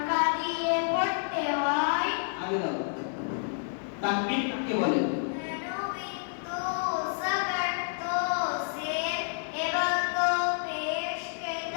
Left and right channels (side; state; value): right; silent; digital silence